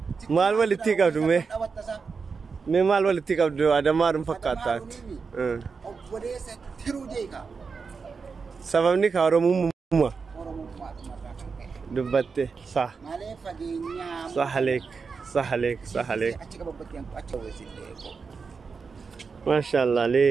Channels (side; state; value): left; quieter; 5.1 dB